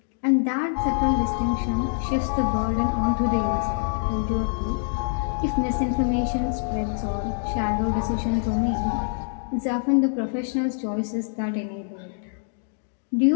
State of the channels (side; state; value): right; silent; digital silence